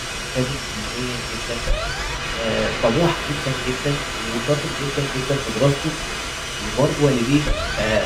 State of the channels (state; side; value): identical; both; correlation 1.00